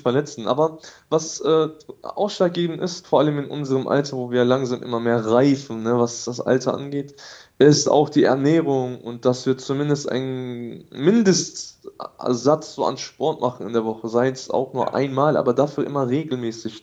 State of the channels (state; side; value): identical; both; correlation 1.00